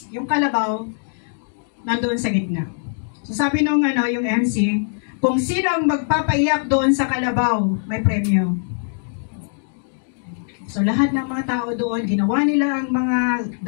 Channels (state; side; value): silent; right; digital silence